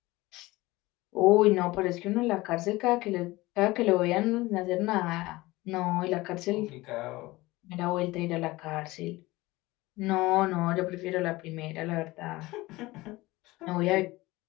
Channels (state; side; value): quieter; right; 20.1 dB